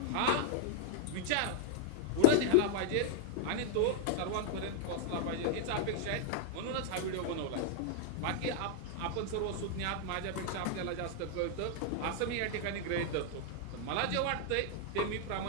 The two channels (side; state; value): both; different; correlation -0.01